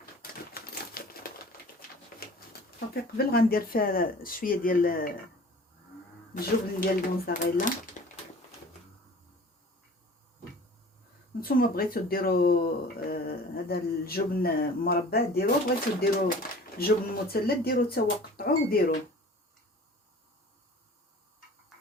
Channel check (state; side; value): normal; both; correlation 0.45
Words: صافي قبل غندير فيها شويه ديال الجبن ديال الموزاريلا. نتوما بغيتو ديروا هذا الجبن مربع ديروه، بغيتو ديروا الجبن مثلث ديروه حتى هو قطعوه وديروه.